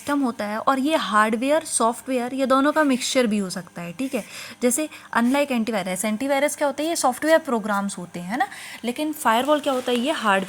होता है, और ये हार्डवेयर सॉफ्टवेयर ये दोनों का मिक्सचर भी हो सकता है, ठीक है। जैसे अनलाइक एंटीवायरस, एंटीवायरस क्या होता है? ये सॉफ्टवेयर प्रोग्राम्स होते हैं, है ना। लेकिन फायरवॉल क्या होता है? ये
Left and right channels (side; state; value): both; identical; correlation 1.00